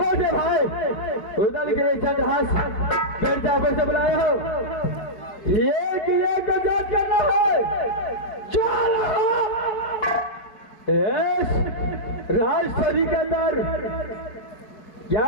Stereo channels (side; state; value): right; late; 4.7 ms